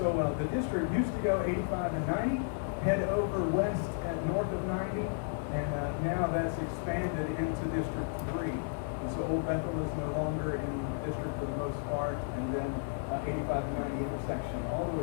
the district used to go 85 and 90, head over west at north of 90, and now that's expanded into District 3. And so Old Bethel is no longer in the district for the most part, and then 85 and 90 intersection all the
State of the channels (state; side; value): silent; right; 56 dB below the other